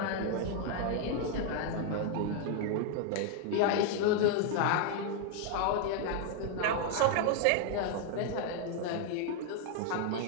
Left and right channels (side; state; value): both; different; correlation 0.00